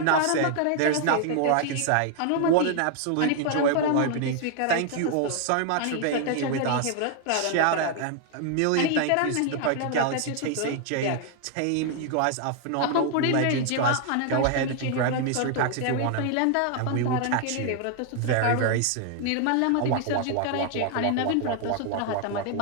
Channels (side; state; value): both; different; correlation 0.00